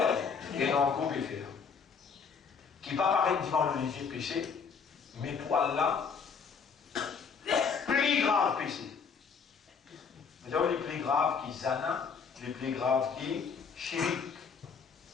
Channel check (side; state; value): right; quieter; 5.9 dB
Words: et dans le groupe faire. Qui va paraître devant le léger péché, mais pour Allah, plus grave péché. Vous avez les plus graves qui zana, les plus graves qui chirik.